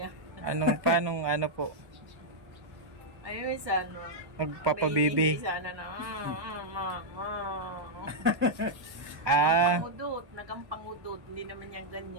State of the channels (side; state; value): left; late; 1.2 ms